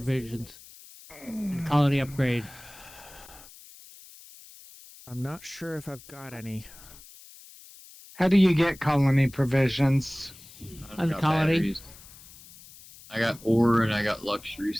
and colony upgrade. I'm not sure if I've got any. How do you get colony provisions? I've On got colony. batteries. I got ore and I got luxury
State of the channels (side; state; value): left; noise; hiss, 20 dB below the sound